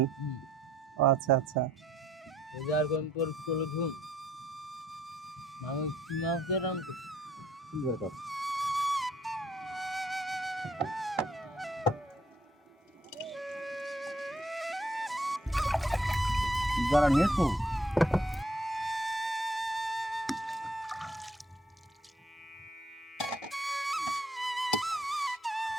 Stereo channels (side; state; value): both; normal; correlation 0.67